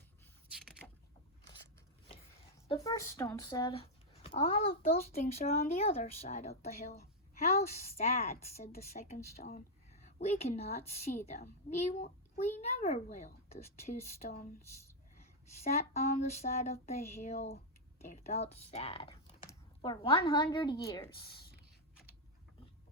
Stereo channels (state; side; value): normal; both; correlation -0.02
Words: The first stone said, "All of those things are on the other side of the hill." "How sad," said the second stone. "We cannot see them. We never will." The two stones sat on the side of the hill. They felt sad. For 100 years.